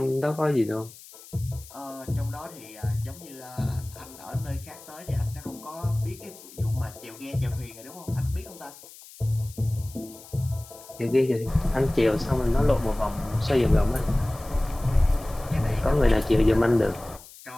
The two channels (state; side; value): noise; left; hiss, 19 dB below the sound